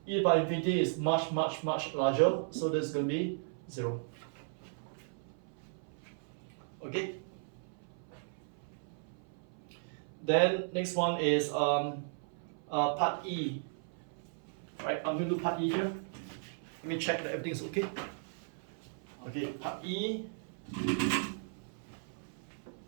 e to the power infinity is much larger, so this is going to be 0. Okay. Then next one is part E. Right, I'm going to do part E here. Let me check that everything is okay. Okay, part E.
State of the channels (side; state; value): left; silent; 54 dB below the other